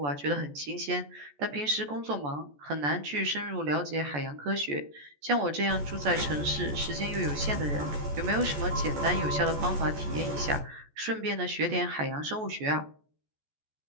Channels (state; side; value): late; left; 14 ms